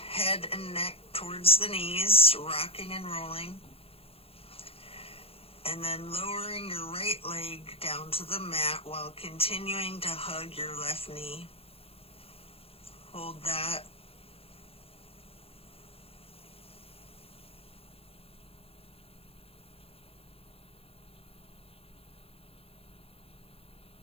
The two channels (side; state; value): right; late; 0.28 ms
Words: and neck towards the knees, rocking and rolling. And then lowering your right leg down to the mat while continuing to hug your left knee. Hold that.